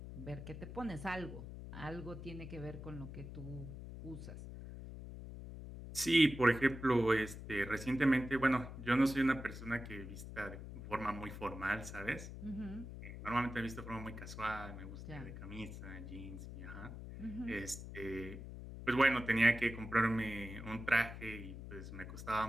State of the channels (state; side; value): noise; left; hum, 10 dB below the sound